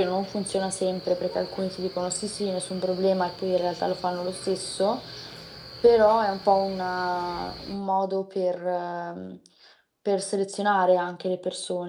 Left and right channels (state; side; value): identical; both; correlation 1.00